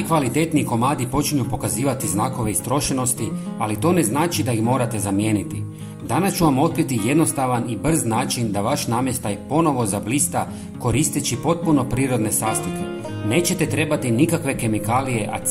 komadi počinju pokazivati znakove istrošenosti, ali to ne znači da ih morate zamijeniti. Danas ću vam otkriti jednostavan i brz način da vaš namještaj ponovo zablista koristeći potpuno prirodne sastojke. Nećete trebati nikakve kemikalije, a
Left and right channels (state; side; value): identical; both; correlation 1.00